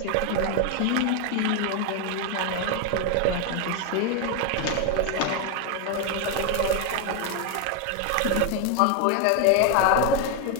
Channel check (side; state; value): both; different; correlation 0.01